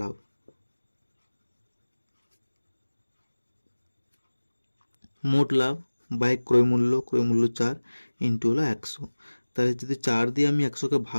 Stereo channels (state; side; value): inverted; both; correlation -1.00